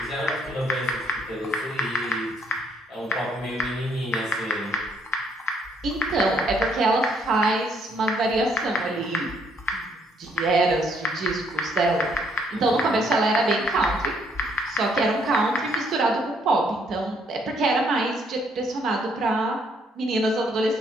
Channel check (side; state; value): both; normal; correlation 0.68